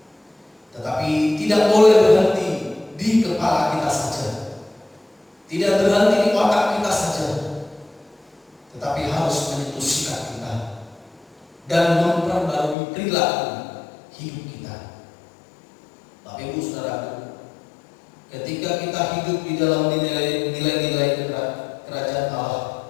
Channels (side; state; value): right; drops out; at 12.8 s